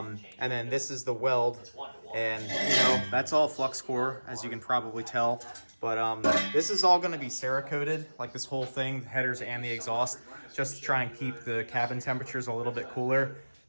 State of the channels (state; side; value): inverted; both; correlation -1.00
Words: then this is the weld, and you know, that's all flux core, as you can probably tell. But this is all going to be Cerakoted, like this whole thing, the headers and the exhaust, just to try and keep the cabin temperatures a little bit cooler.